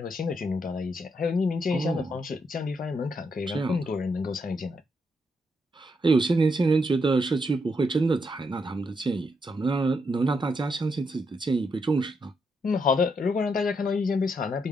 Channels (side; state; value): both; normal; correlation 0.79